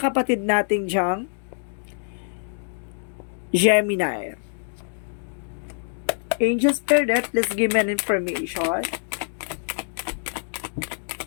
nating diyang Gemini. Angel Spirit, let's give me an information.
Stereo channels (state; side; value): silent; right; 62 dB below the other